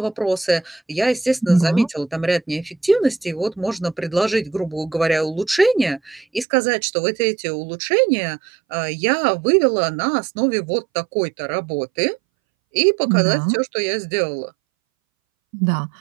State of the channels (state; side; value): drops out; left; at 6.5 s